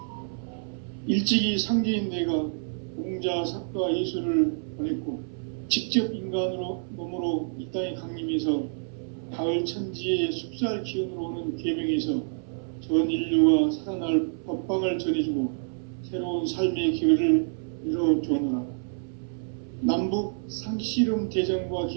일찍이 상제인 내가 공자, 석가, 예수를 보냈고 직접 인간으로 몸으로 이 땅에 강림해서 가을 천지의 숲살 기운으로 오는 계명에서 전 인류가 살아날 법방을 전해주고 새로운 삶의 기회를 열어주었노라. 남북 상씨름 대전과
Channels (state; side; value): silent; left; 60 dB below the other